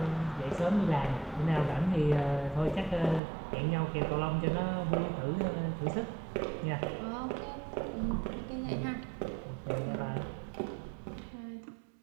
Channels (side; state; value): left; drops out; at 3.2 s